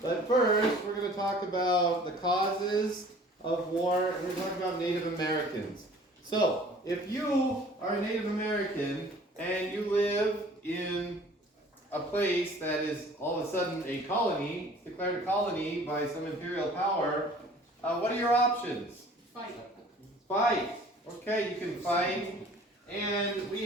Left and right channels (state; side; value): normal; both; correlation 0.50